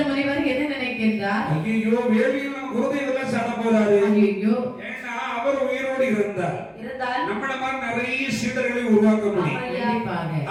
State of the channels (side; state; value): both; identical; correlation 1.00